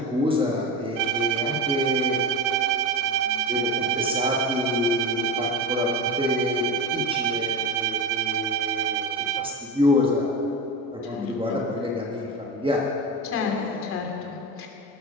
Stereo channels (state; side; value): normal; both; correlation 0.23